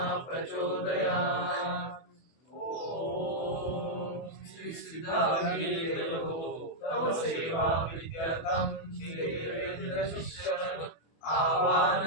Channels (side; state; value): right; late; 24 ms